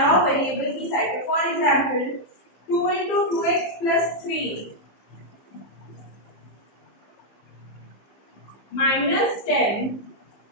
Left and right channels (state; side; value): late; right; 15 ms